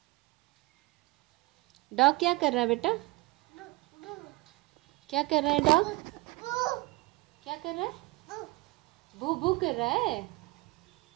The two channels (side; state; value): left; quieter; 23.5 dB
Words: डॉग क्या कर रहा है बेटा? क्या कर रहा है डॉग? क्या कर रहा है? भू भू कर रहा है।